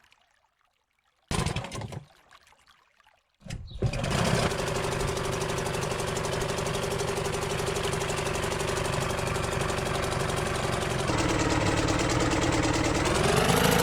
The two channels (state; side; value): identical; both; correlation 1.00